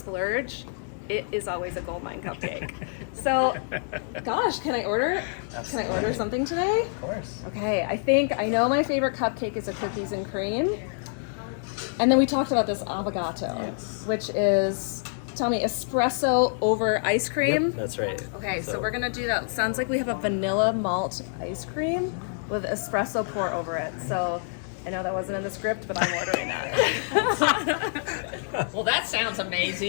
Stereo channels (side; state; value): right; silent; digital silence